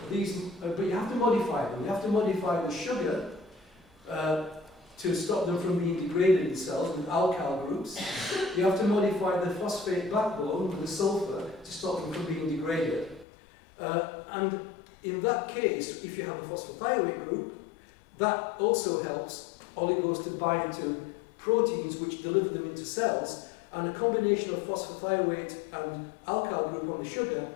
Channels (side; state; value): right; drops out; at 13.2 s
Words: But you have to modify them. You have to modify the sugar to stop them from being degraded in cells with alkyl groups. You have to modify the phosphate backbone with the sulfur to stop them from being degraded. And in that case, if you have a phosphorothioate group, that also helps oligos to bind to proteins which deliver them into cells, and a combination of phosphothioate and alkyl group on the sugar